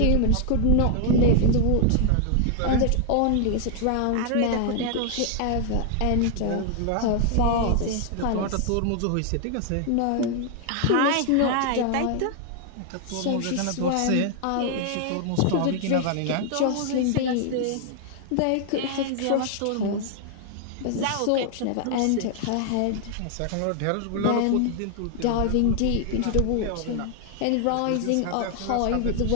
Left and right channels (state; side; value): different; both; correlation 0.00